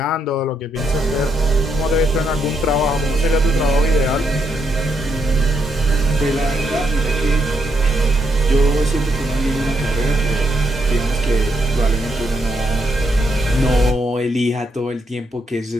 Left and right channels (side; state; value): both; normal; correlation 0.77